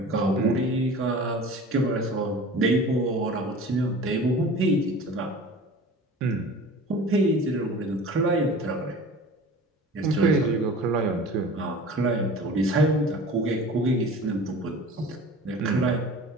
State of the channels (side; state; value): both; normal; correlation 0.40